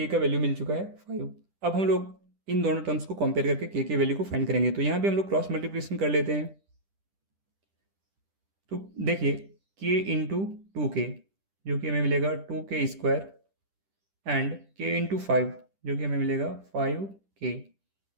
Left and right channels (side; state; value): left; late; 10 ms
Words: का वैल्यू मिल चुका है 5। अब हम लोग इन दोनों टर्म्स को कंपेयर करके k के वैल्यू को फाइंड करेंगे। तो यहाँ पे हम लोग क्रॉस मल्टीप्लिकेशन कर लेते हैं। तो देखिए k इंटू 2k जो कि हमें मिलेगा 2k² एंड k इंटू 5 जो कि हमें मिलेगा 5k